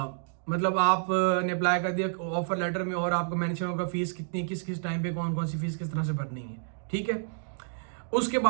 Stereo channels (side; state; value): left; silent; digital silence